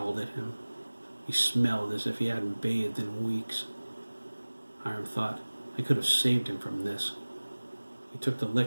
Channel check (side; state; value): both; inverted; correlation -1.00